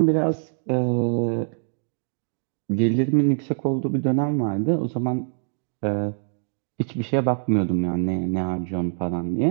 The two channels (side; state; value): left; silent; digital silence